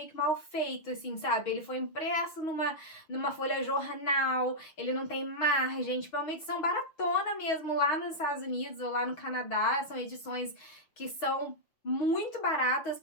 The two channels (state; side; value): late; right; 6.3 ms